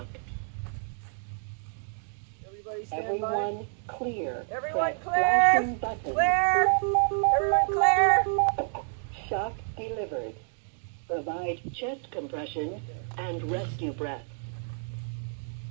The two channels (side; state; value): left; silent; digital silence